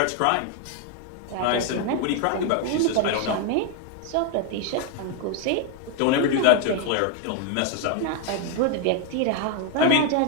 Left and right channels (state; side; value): different; both; correlation 0.01